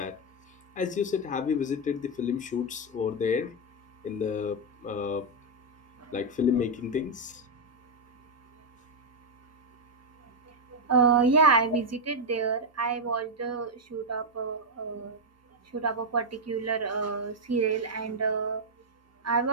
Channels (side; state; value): both; normal; correlation 0.00